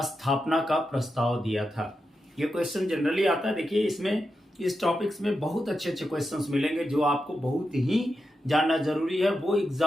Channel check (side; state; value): both; normal; correlation 0.88